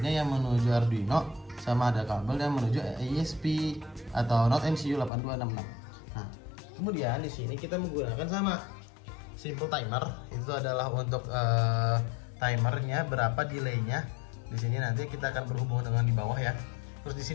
yang menuju Arduino, sama ada kabel yang menuju ISP atau Not MCU 8266. Nah, kemudian di sini kita menggunakan sama simple timer. Itu adalah untuk timernya berapa delaynya. Di sini nanti kita akan berhubung dengan di bawah ya. Terus di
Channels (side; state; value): right; drops out; at 5.1 s